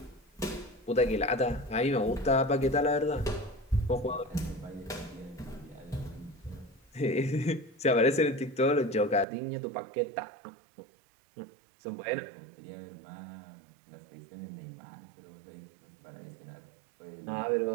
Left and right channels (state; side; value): drops out; left; at 9.2 s